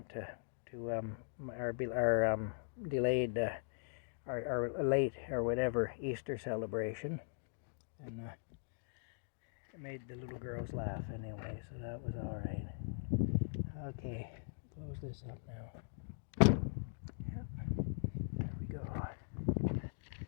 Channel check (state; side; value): silent; right; digital silence